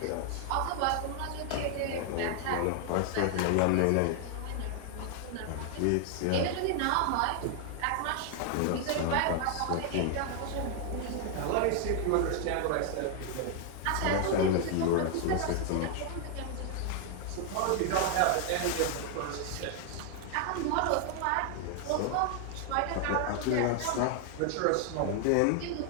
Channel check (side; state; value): both; different; correlation 0.00